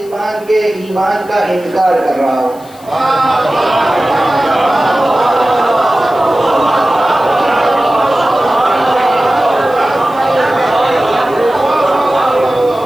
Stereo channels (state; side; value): noise; left; hiss, 24 dB below the sound